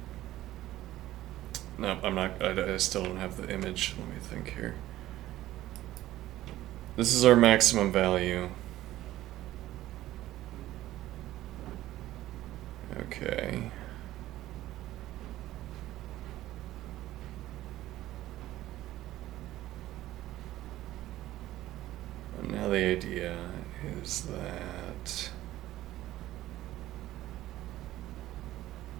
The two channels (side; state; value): left; quieter; 14.9 dB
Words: no, I'm not, I still don't have the image. Let me think here. This is our maximum value. Okay. And now the idea is that